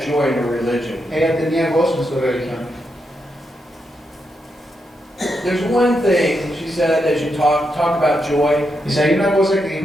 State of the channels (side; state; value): both; normal; correlation 0.83